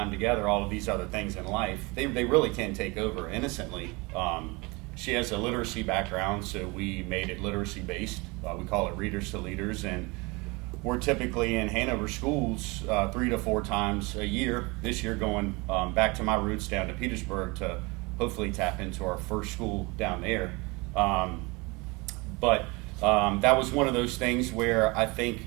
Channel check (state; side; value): quieter; left; 26.1 dB